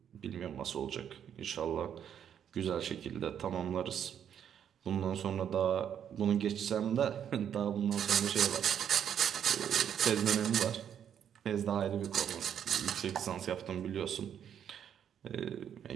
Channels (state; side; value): quieter; left; 8.9 dB